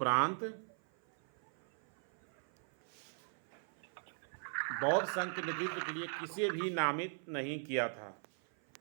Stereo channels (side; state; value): left; silent; 52 dB below the other